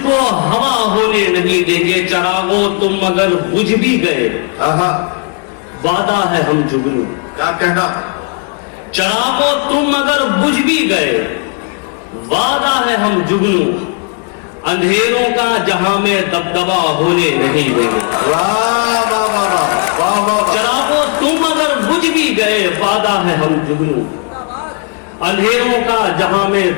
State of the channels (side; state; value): right; quieter; 39.1 dB